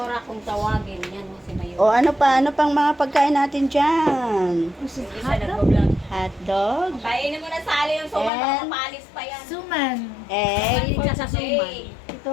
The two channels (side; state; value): right; drops out; at 8.3 s